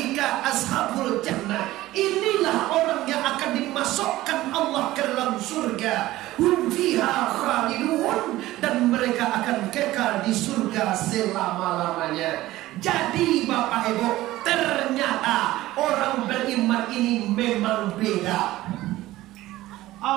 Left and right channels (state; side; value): quieter; left; 16.5 dB